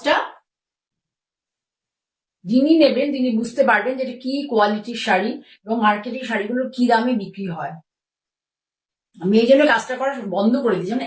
যিনি নেবেন তিনি বুঝতে পারবেন যে এটা কি কোয়ালিটির শাড়ি এবং মার্কেটের শাড়িগুলো কি দামে বিক্রি হয়। আমি এই জন্য কাজটা করা বন্ধ করে দিই, যেমন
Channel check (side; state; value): both; identical; correlation 1.00